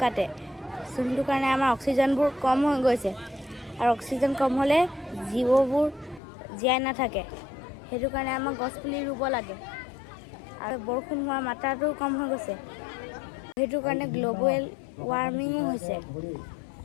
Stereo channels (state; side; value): drops out; right; at 6.2 s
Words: কাটে। যোনটো কাৰণে আমাৰ অক্সিজেনবোৰ কম হৈ গৈছে। আৰু অক্সিজেন কম হ'লে জীৱবোৰ জীয়াই নাথাকে। সেইটো কাৰণে আমাৰ গছ পুলি ৰুব লাগে। আৰু বৰষুণ হোৱা মাত্ৰাটো কম হৈ গৈছে। সেইটো কাৰণে গ্লোবেল ৱাৰ্মিং হৈছে।